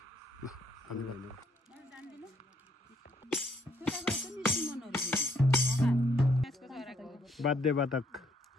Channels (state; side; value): normal; both; correlation 0.69